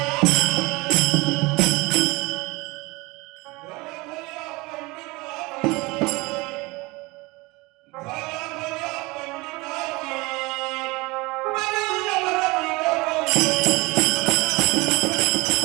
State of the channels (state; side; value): quieter; left; 23.7 dB